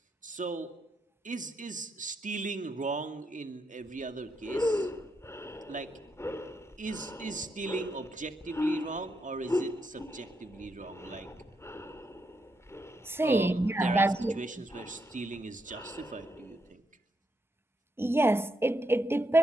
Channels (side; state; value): both; normal; correlation 0.80